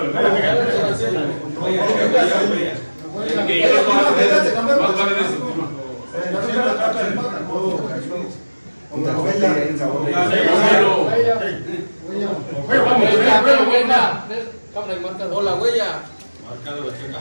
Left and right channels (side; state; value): both; inverted; correlation -1.00